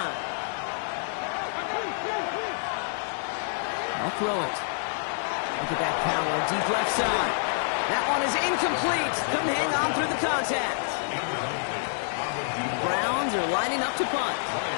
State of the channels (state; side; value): silent; right; digital silence